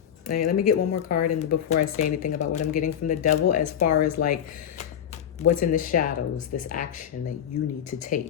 Let me get one more card and before I say anything about what I'm getting from the Devil as far as like what's in the shadows, this action that you need to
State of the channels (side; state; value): right; quieter; 9.3 dB